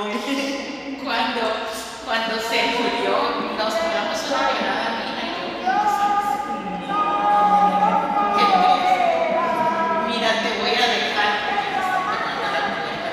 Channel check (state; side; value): identical; both; correlation 1.00